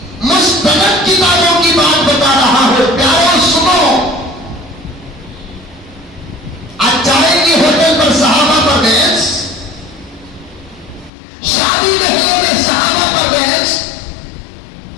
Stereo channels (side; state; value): right; drops out; at 11.1 s